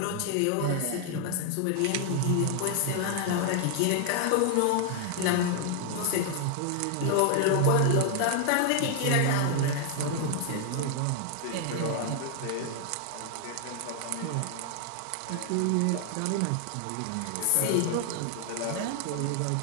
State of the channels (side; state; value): both; different; correlation 0.00